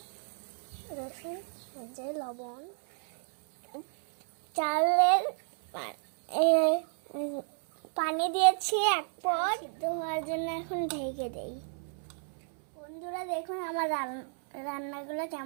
রসুন, যে লবণ, চালের পানি দিয়েছি 1 পট ধোয়ার জন্য, এখন ঢেকে দেই। বন্ধুরা দেখুন আমার রান্নাগুলো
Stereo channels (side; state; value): left; silent; 57 dB below the other